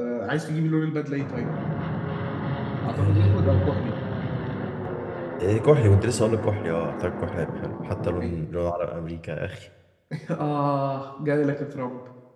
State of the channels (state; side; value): identical; both; correlation 1.00